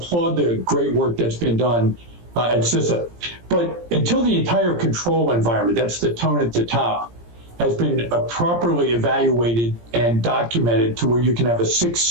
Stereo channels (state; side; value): late; left; 17 ms